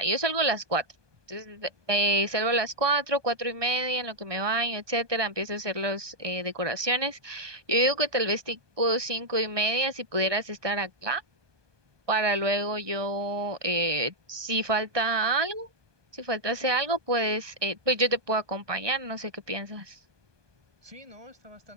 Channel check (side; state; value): left; late; 1.2 ms